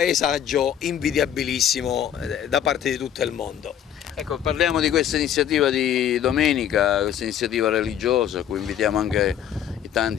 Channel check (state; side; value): quieter; right; 9.8 dB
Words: invidiabilissimo da parte di tutto il mondo. Ecco, parliamo di questa iniziativa di domenica, questa iniziativa religiosa, a cui invitiamo anche i